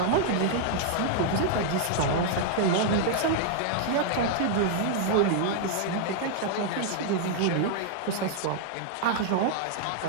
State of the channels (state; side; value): different; both; correlation -0.01